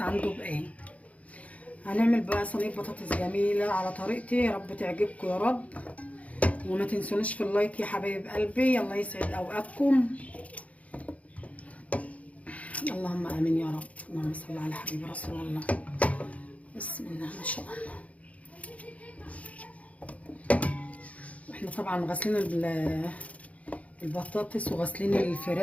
عنده بايه. هنعمل بقى صينيه بطاطس جميله على طريقتي، يا رب تعجبكم يا رب. وما تنسونيش في اللايك يا حبايب قلبي، الله يسعد اوقاتكم. اللهم امين يا رب. اللهم صل على حبيب رسول الله. بسم الله ما شاء الله. احنا طبعا غاسلين البطاطس وغاسلين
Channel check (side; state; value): right; late; 0.067 ms